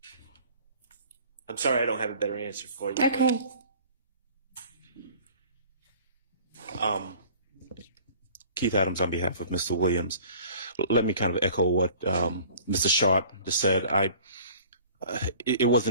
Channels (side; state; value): both; inverted; correlation -0.48